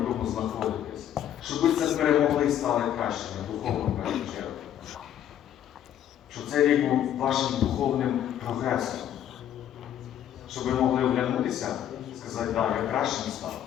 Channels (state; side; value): quieter; right; 10.7 dB